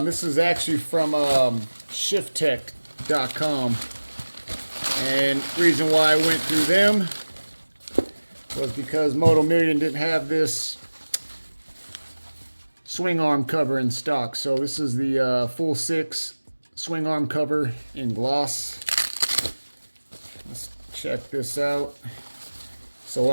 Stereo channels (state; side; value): inverted; both; correlation -1.00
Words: is actually from shifttech.com, and the reason why I went through them was because Moto Million didn't have this swing arm cover in stock. So this is the full 6 swing arm cover in gloss. Let's check this out.